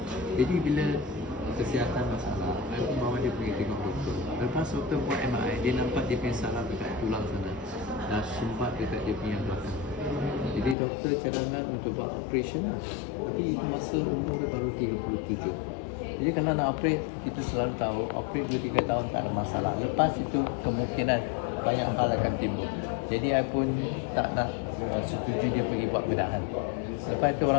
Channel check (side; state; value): right; drops out; at 10.8 s